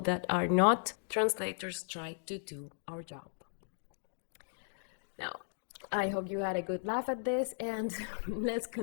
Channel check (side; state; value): right; silent; digital silence